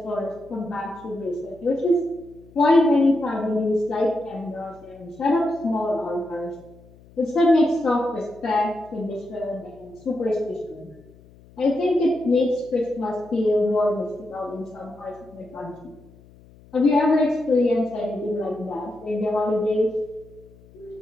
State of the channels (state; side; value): noise; left; hum, 25 dB below the sound